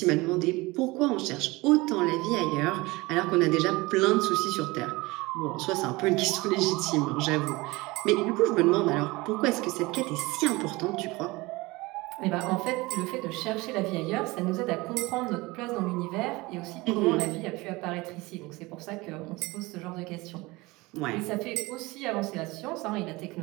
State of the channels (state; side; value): quieter; left; 22.3 dB